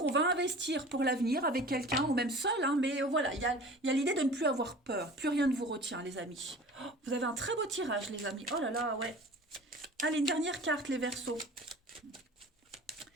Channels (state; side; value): normal; both; correlation 0.41